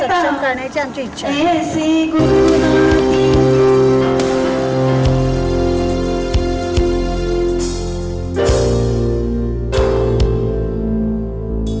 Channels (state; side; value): identical; both; correlation 1.00